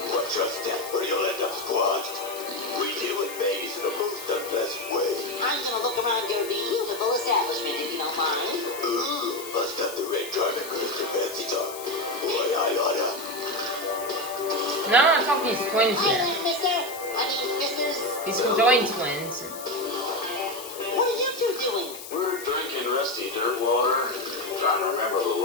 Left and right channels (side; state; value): left; noise; hiss, 12 dB below the sound